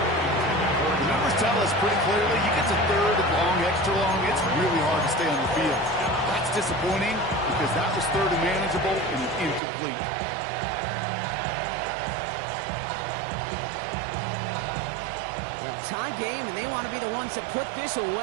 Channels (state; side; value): drops out; left; at 9.6 s